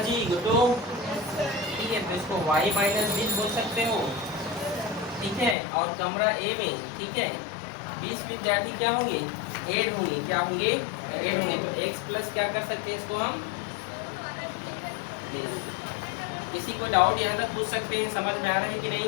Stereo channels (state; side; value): drops out; right; at 5.6 s